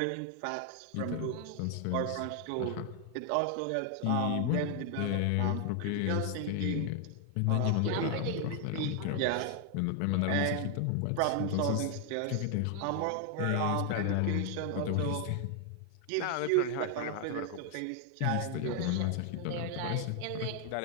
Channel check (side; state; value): both; different; correlation 0.00